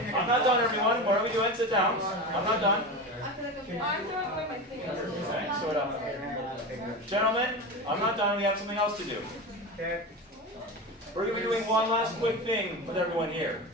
I'm not done, everyone. What are we doing? Sit down. I'm not done. I'm throwing away my thing. Okay, sort of. Gentlemen, I'm not done. We have something else to do. We're going to be doing one last quick thing with everyone here.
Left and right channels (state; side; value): normal; both; correlation 0.25